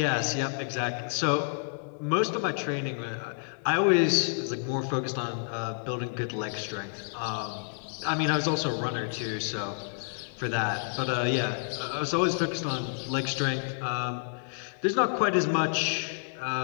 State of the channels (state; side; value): silent; right; digital silence